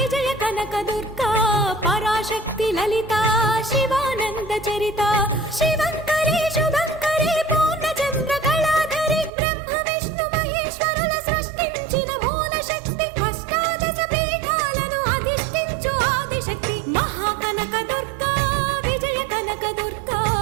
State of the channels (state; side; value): drops out; left; at 9.3 s